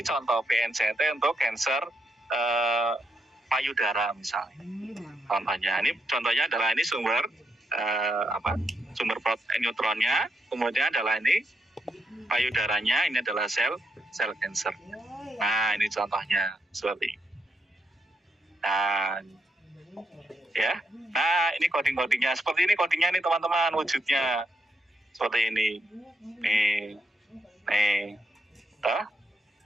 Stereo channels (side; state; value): both; normal; correlation 0.80